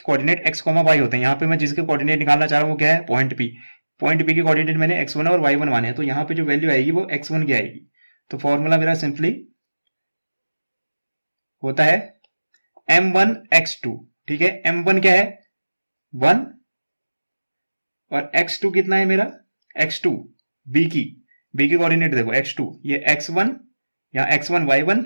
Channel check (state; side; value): inverted; both; correlation -1.00